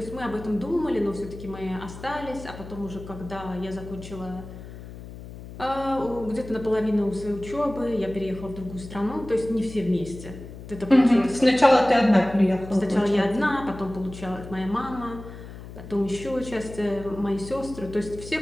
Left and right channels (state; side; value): noise; left; hum, 13 dB below the sound